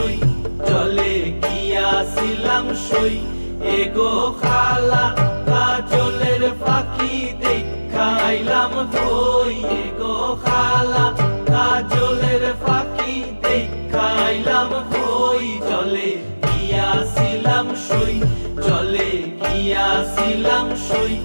জলে গিয়াছিলাম সই এগো খালা কাজলের পাখি দেখাইলাম কই এগো খালা কাজলের পাখি দেখাইলাম কই জলে গিয়াছিলাম সই জলে গিয়াছিলাম সই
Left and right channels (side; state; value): both; inverted; correlation -1.00